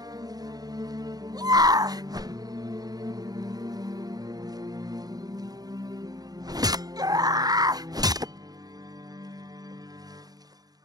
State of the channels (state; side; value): late; left; 0.19 ms